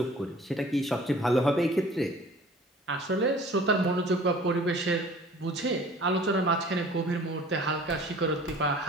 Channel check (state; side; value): normal; both; correlation 0.48